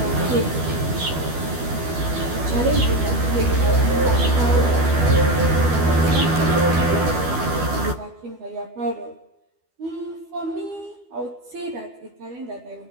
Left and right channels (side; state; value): left; late; 12 ms